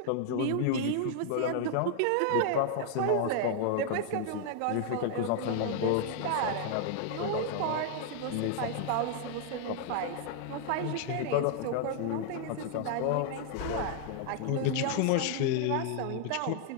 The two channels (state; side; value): different; both; correlation 0.00